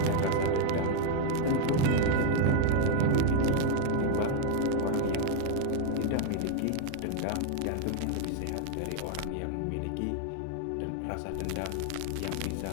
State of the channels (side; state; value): both; different; correlation 0.01